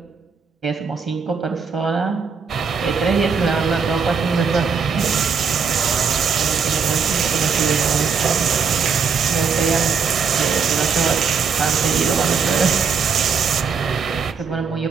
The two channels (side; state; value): left; quieter; 5.8 dB